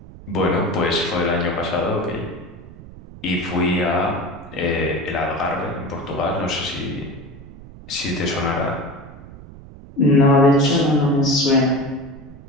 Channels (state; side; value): noise; right; rumble, 17 dB below the sound